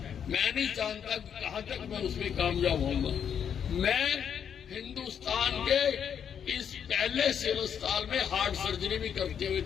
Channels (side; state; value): right; quieter; 8.1 dB